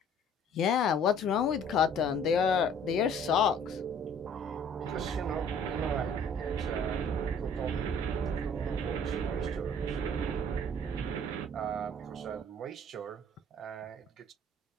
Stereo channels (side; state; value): both; normal; correlation 0.54